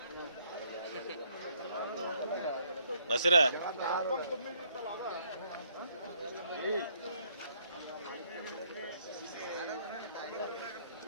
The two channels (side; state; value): both; inverted; correlation -0.67